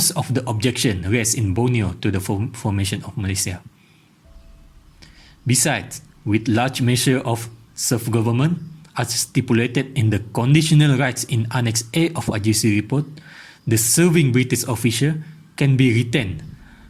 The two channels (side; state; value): both; identical; correlation 1.00